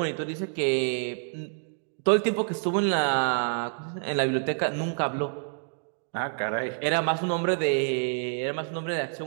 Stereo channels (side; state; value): left; silent; digital silence